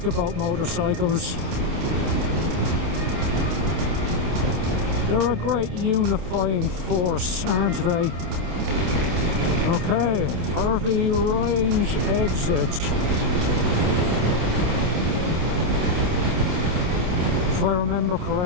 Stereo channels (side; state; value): left; late; 28 ms